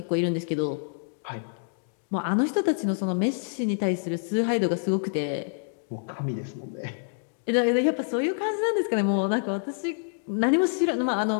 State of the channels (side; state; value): right; silent; digital silence